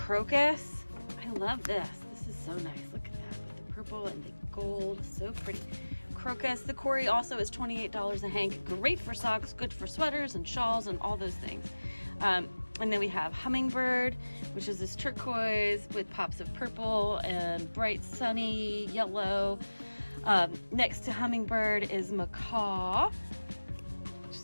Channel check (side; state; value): both; inverted; correlation -1.00